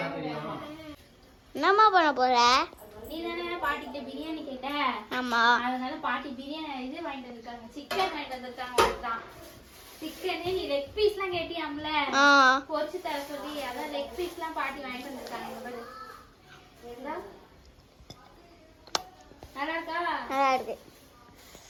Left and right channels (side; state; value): both; identical; correlation 1.00